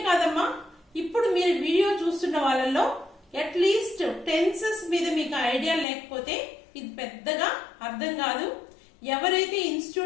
ఇప్పుడు మీరు వీడియో చూస్తున్న వాళ్ళలో అట్లీస్ట్ టెన్సెస్ మీద మీకు ఐడియా లేకపోతే ఇది పెద్దగా అర్థం కాదు. ఎవరైతే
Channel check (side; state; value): right; drops out; at 5.9 s